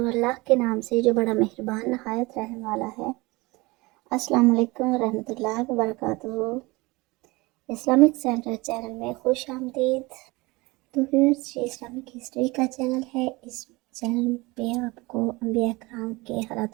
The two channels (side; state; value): left; quieter; 23.4 dB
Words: اللہ کے نام سے جو بڑا مہربان نہایت رحم والا ہے۔ السلام علیکم ورحمۃ اللہ وبرکاتہ۔ اسلامک سینٹر چینل میں خوش آمدید۔ تو ویورز، یہ اسلامک ہسٹری کا چینل ہے۔ اس چینل پہ آپ کو انبیاء کرام کے